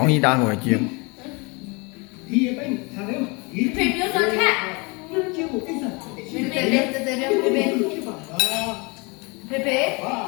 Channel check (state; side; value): quieter; right; 29.0 dB